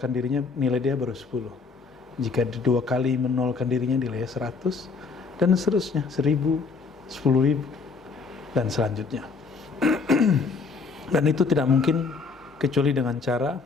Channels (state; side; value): quieter; right; 4.7 dB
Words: dirinya, nilai dia baru 10. Jika 2 kali menolkan dirinya, nilainya 100, dan seterusnya, 1000, 10.000, dan selanjutnya. Dan itu tidak mungkin kecuali dengan cara